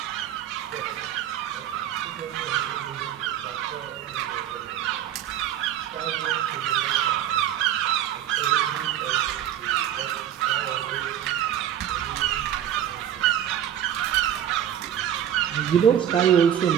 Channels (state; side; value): quieter; left; 10.5 dB